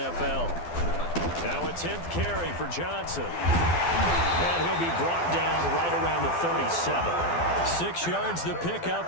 Now a 10th carry for Johnson. And he'll be brought down right around the 37. 6 yards the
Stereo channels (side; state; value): right; late; 12 ms